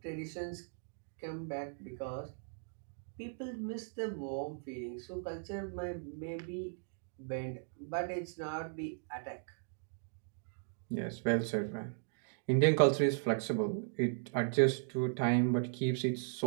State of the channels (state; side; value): silent; left; digital silence